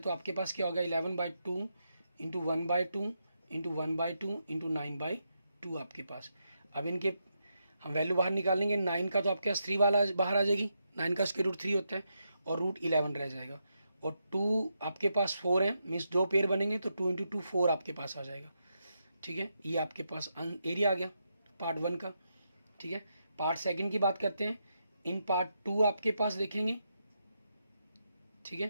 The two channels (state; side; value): inverted; both; correlation -0.83